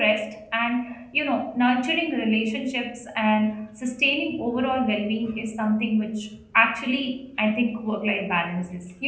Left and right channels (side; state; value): both; identical; correlation 1.00